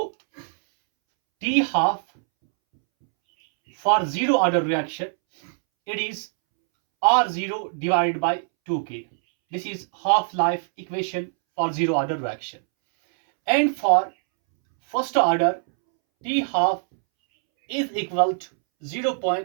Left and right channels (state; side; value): silent; left; 63 dB below the other